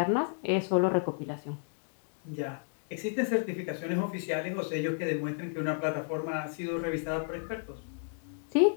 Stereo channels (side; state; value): right; silent; digital silence